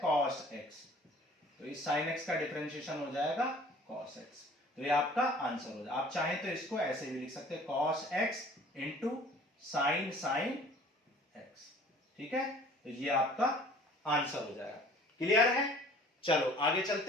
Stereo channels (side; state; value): both; normal; correlation 0.50